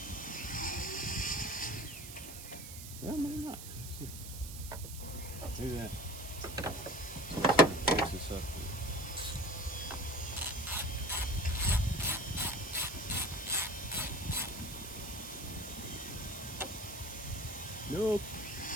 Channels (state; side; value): noise; right; hiss, 11 dB below the sound